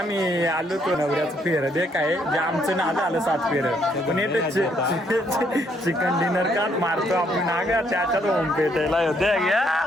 आलो तो नवऱ्याचं फेर दे काय जे आमचं नाद आलं 7 फेर पण येते चिकन डिनर का मारतो आपण नागा त्याच्यात होम पेटायला होते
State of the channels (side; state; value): both; normal; correlation 0.70